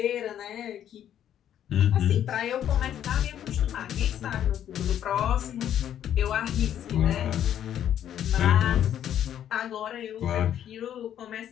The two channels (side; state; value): right; quieter; 10.4 dB